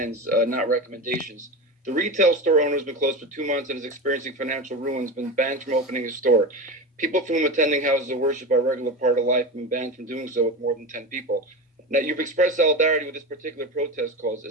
not recommendations. The retail store owner has been closed for 2 months and is experiencing financial ruin, has been banned from opening his store. People from attending houses of worship are a regular part of life have been banned from doing so with more than 10 people. Now, you've expressed solidarity with this particular protest cause.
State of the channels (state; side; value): normal; both; correlation 0.24